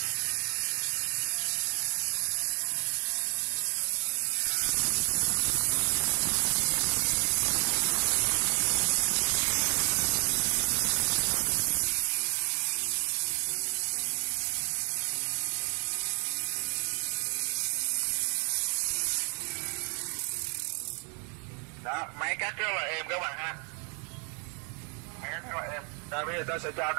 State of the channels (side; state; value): left; quieter; 37.1 dB